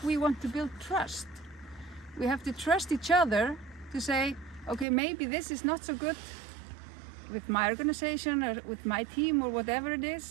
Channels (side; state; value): left; drops out; at 4.9 s